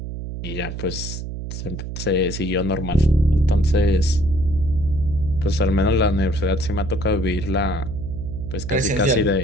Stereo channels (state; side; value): noise; right; hum, 7 dB below the sound